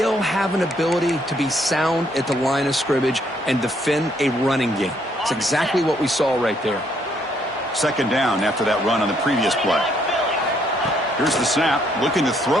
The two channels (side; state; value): both; normal; correlation 0.70